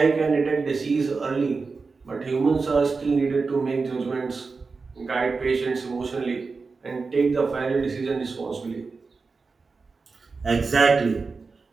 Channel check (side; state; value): left; quieter; 4.4 dB